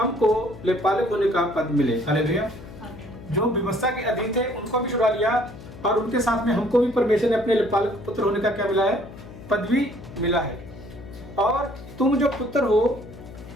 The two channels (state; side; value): noise; left; hum, 16 dB below the sound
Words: लेपालक होने का पद मिले। हालेलुया। जो व्यवस्था के अधीन थे उनको भी छुड़ा लिया और उनके साथ में हमको भी परमेश्वर ने अपने लेपालक पुत्र होने का क्या मिला है? पदवी मिला है। और तुम जो पुत्र हो,